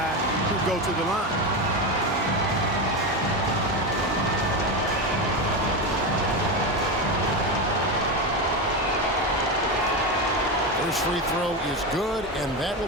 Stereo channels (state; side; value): normal; both; correlation 0.16